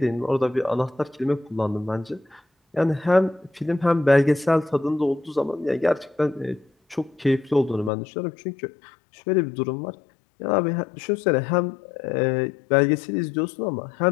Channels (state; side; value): drops out; right; at 7.9 s